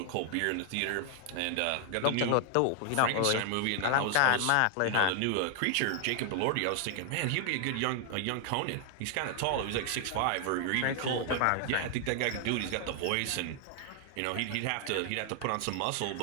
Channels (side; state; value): both; different; correlation 0.00